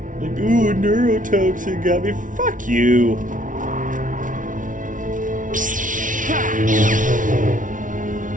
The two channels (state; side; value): late; left; 0.38 ms